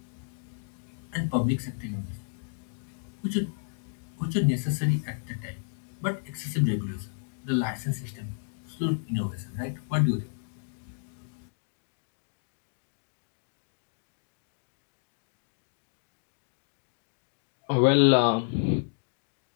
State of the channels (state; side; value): silent; right; digital silence